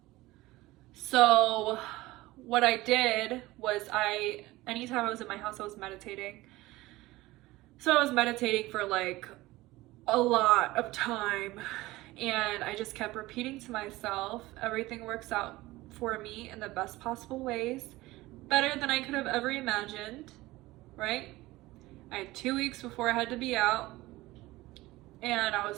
So what I did was anytime I was in my house, I was meditating. So I was meditating for like a lot of time, and I just kept repeating to myself, everything works out for me in the best possible ways, better than I could have ever imagined, right? I had 2 weeks before I had to be out, and I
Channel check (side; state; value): left; quieter; 18.9 dB